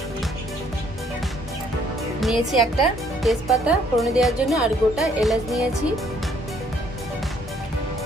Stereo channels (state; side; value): normal; both; correlation 0.64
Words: একটা তেজপাতা ফোড়নে দেওয়ার জন্য, আর গোটা এলাচ নিয়েছি,